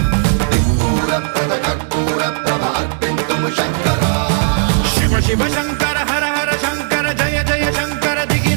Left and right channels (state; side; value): silent; left; 69 dB below the other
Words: దిక్పూరప్రద కర్పూర ప్రభ అర్పింతుము శంకరా శివ శివ శంకర హర హర శంకర జయ జయ శంకర